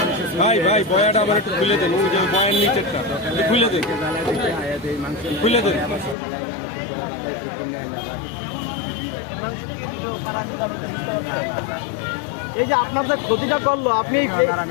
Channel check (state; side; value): drops out; right; at 6.2 s